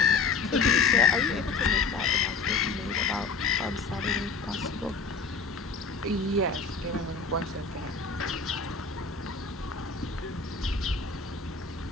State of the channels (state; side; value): quieter; right; 4.8 dB